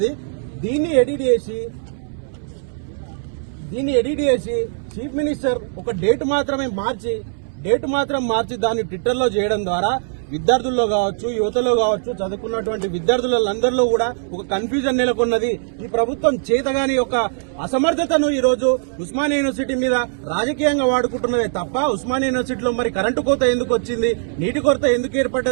దీన్ని ఎడిట్ చేసి చీఫ్ మినిస్టర్ ఒక డేట్ మాత్రం మార్చి దాన్ని ట్విట్టర్లో చేయడం ద్వారా విద్యార్థుల్లో కావచ్చు, యువతలో కావచ్చు, చదువుకున్నటువంటి విద్యార్థులందరిలో కూడా ఒక కన్ఫ్యూజన్ నెలకొన్నది. ఈ ప్రభుత్వం చేతగాని ఒక అసమర్థతను ఈ రోజు ఉస్మానియా యూనివర్సిటీ మీద రాజకీయంగా వాడుకుంటున్నదే తప్ప ఉస్మానియా యూనివర్సిటీలో మరి కరెంటు కోత ఎందుకు వచ్చింది, నీటి కొరత ఎందుకు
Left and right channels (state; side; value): silent; left; 65 dB below the other